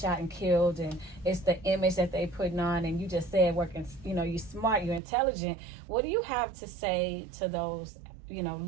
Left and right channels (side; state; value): left; drops out; at 5.0 s